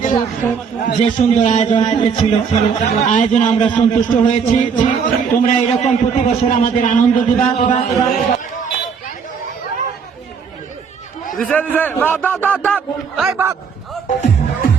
যে সুন্দর আয়োজন করেছিল, আয়োজনে আমরা সন্তুষ্ট হয়েছি। তোমরা এরকম প্রতি বছর আমাদের আনন্দ দিবা।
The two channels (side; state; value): left; quieter; 6.3 dB